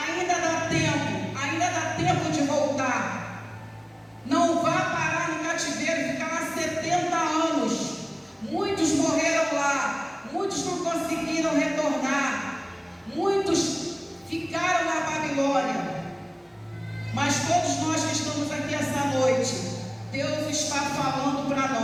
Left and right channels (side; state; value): both; identical; correlation 1.00